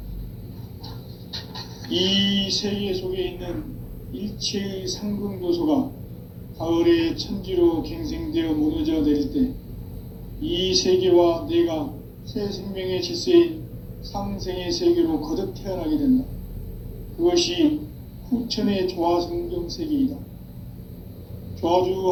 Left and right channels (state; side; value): identical; both; correlation 1.00